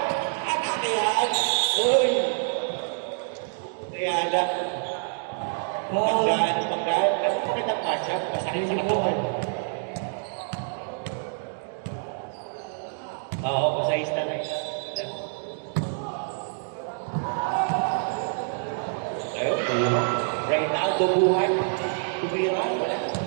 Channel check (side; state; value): left; silent; digital silence